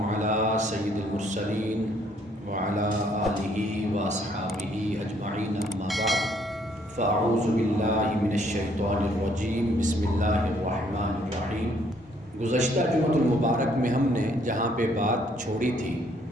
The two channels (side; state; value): both; normal; correlation 0.66